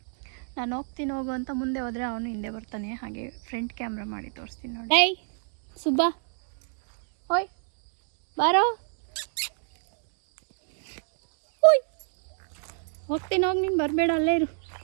ಹೋಗು ಅಂತ ಮುಂದೆ ಹೋದರೆ ಅವನು ಹಿಂದೆ ಬರ್ತಾನೆ. ಹಾಗೆ ಫ್ರಂಟ್ ಕ್ಯಾಮ್ರಾ ಮಾಡಿ ತೋರಿಸ್ತೀನಿ ನೋಡಿ. ಏಯ್ ಸುಬ್ಬಾ, ಓಯ್ ಬಾರೋ, ಓಯ್ ಹೋಗ್ತೀನಿ, ಹೋಗಿ ನೀನು ಬರಬೇಡ, ಅಲ್ಲೇ ಇರು.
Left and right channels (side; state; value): left; silent; 59 dB below the other